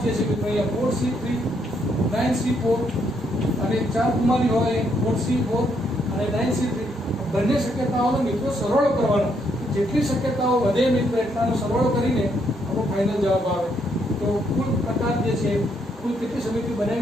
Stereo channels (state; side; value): normal; both; correlation 0.74